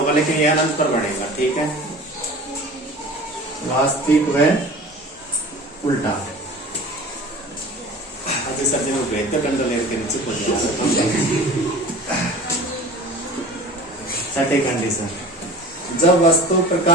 लेकिन ये अनंत पर बनेगा। ठीक है, वास्तविक व उल्टा। अभी सर जी भेजते कंट्रोलर के नीचे छठी कंडीशन, जब वस्तु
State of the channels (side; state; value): both; normal; correlation 0.40